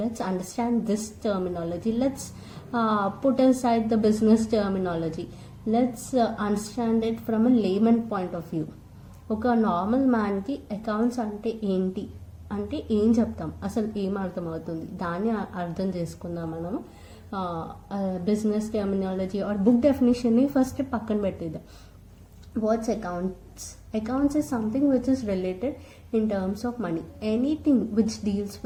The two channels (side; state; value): both; identical; correlation 1.00